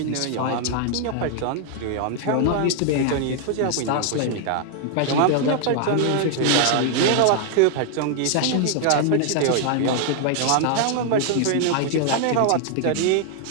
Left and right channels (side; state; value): both; different; correlation 0.00